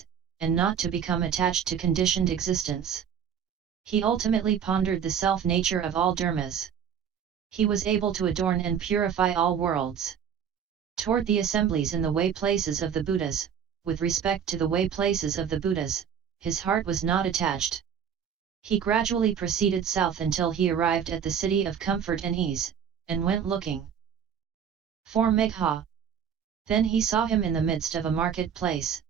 and not to become attached to conditioned existence. He ultimately pondered the self-nature of all dharmas. He was able to adorn and purify all worlds. Toward the assemblies in the way places of the Buddhas, with respect to the way places of the Buddhas, his heart was not attached. He gradually proceeded south until he arrived at the city of comfort and ease, and went looking for Megha. Then he saw him in the midst of a marketplace,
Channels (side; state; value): left; quieter; 8.0 dB